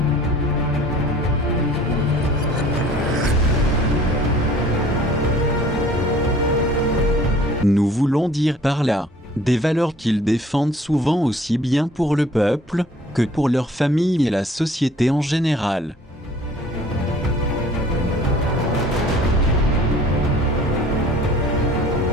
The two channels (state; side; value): normal; both; correlation 0.52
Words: nous voulons dire par là des valeurs qu'ils défendent souvent aussi bien pour le peuple que pour leur famille et la société en général.